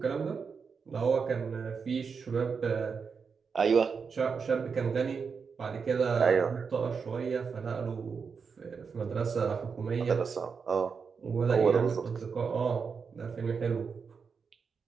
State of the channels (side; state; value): left; quieter; 5.7 dB